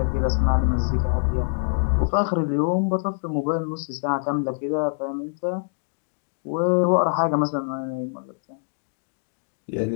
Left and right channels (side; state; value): right; silent; digital silence